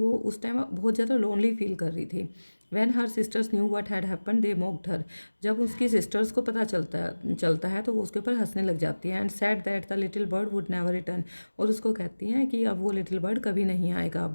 उस टाइम बहुत ज़्यादा लोनली फील कर रही थी। When her sisters knew what had happen they mocked her. जब उसकी सिस्टर्स को पता चलता है तो वो उसके ऊपर हंसने लग जाती है। And said that the little bird would never return. और उसको कहती हैं कि अब वो लिटिल बर्ड कभी नहीं आएगा।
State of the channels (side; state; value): both; inverted; correlation -1.00